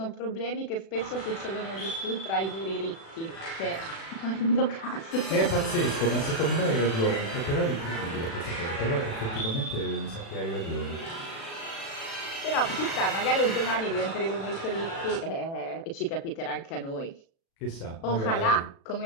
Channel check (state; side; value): late; right; 36 ms